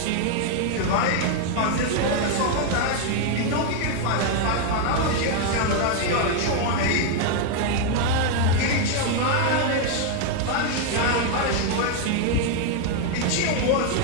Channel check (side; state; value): both; different; correlation 0.00